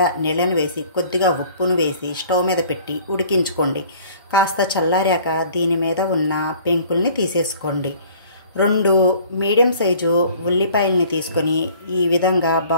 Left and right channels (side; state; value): both; inverted; correlation -0.52